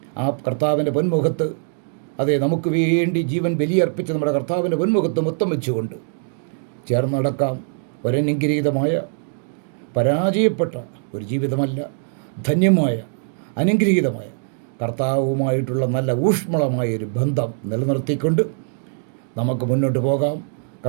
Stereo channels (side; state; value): left; silent; digital silence